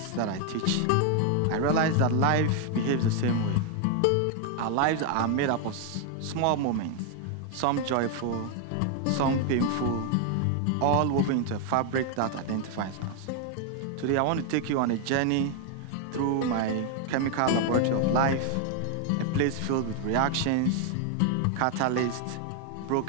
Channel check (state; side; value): different; both; correlation 0.00